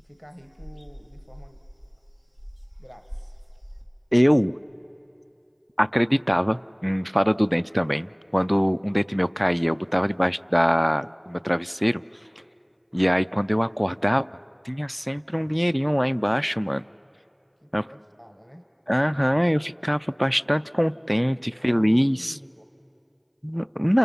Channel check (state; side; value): identical; both; correlation 1.00